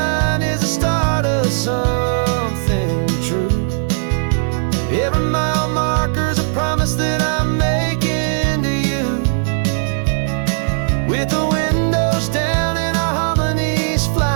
is the start of something true. Every mile marker's a promise that I'm making to you. With the windows down and our harmonies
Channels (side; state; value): left; silent; digital silence